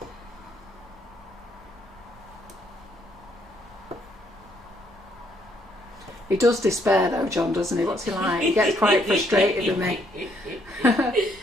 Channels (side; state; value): both; normal; correlation 0.70